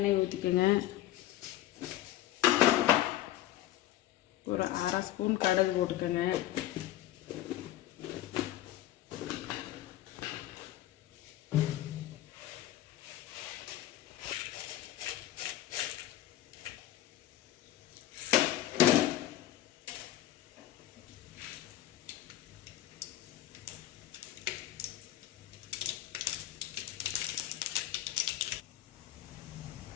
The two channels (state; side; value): quieter; right; 14.0 dB